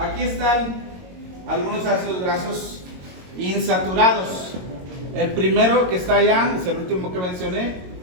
están algunos ácidos grasos insaturados. El primero que está allá es el último que mencioné,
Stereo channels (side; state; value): left; late; 22 ms